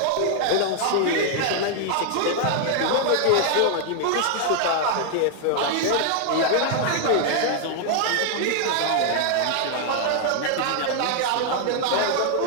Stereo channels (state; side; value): different; both; correlation 0.00